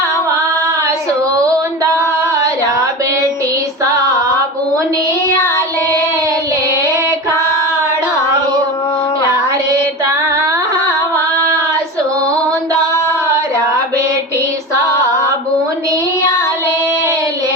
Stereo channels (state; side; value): normal; both; correlation 0.27